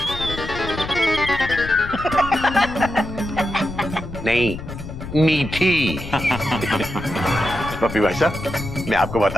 नहीं, मीठी। पप्पी भाई साहब, मैं आपको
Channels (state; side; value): noise; left; rumble, 10 dB below the sound